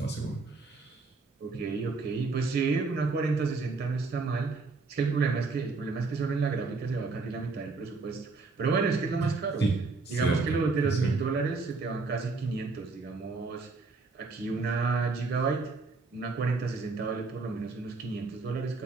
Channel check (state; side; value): quieter; left; 4.0 dB